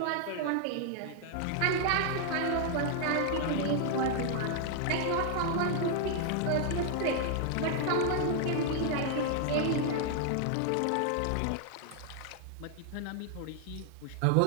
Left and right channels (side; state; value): both; different; correlation 0.00